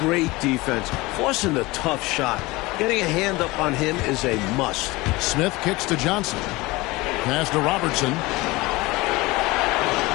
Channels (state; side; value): quieter; right; 21.7 dB